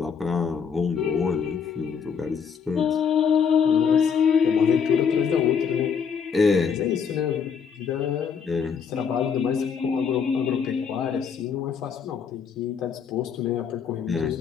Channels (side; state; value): right; quieter; 6.6 dB